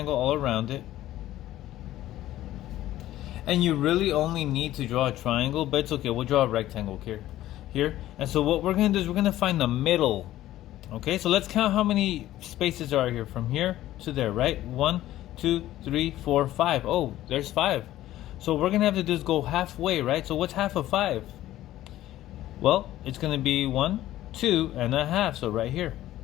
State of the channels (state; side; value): quieter; right; 14.3 dB